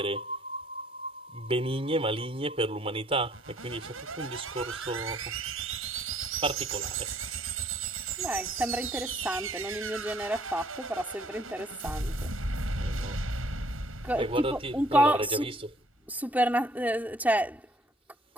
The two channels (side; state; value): both; normal; correlation 0.61